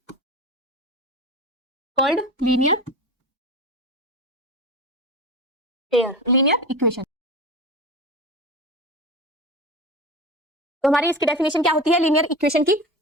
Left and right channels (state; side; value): normal; both; correlation 0.29